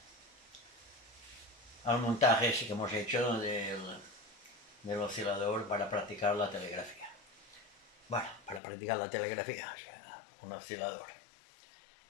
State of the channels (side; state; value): right; drops out; at 8.6 s